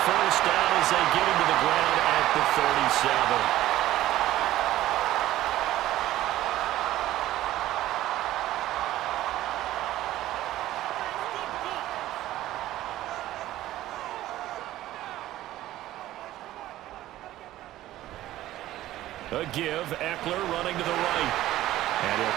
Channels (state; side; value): quieter; left; 14.7 dB